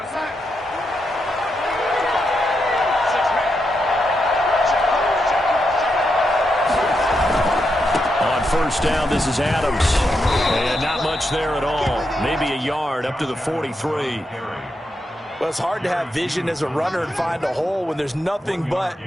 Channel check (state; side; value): normal; both; correlation 0.84